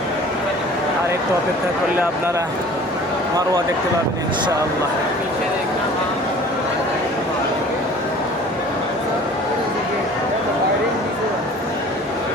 আর একটু অপেক্ষা করলে আপনারা মারওয়া দেখতে পাবেন ইনশাআল্লাহ।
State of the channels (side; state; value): both; normal; correlation 0.47